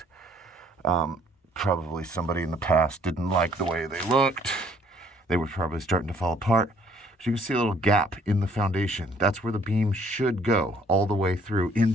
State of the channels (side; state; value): both; normal; correlation 0.61